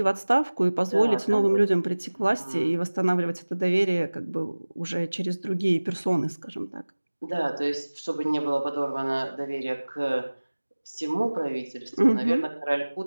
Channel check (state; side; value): inverted; both; correlation -1.00